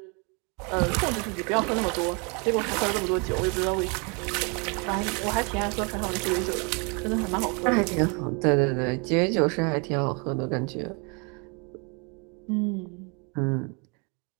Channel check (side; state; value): left; quieter; 33.0 dB